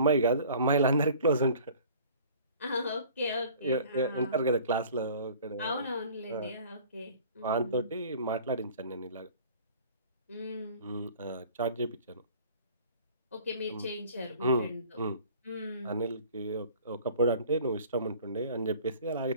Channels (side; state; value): both; inverted; correlation -0.49